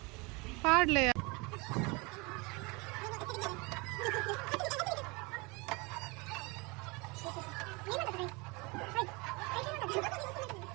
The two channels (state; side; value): quieter; left; 27.2 dB